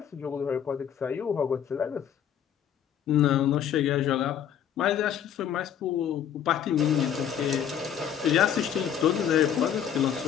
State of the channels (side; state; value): right; quieter; 9.1 dB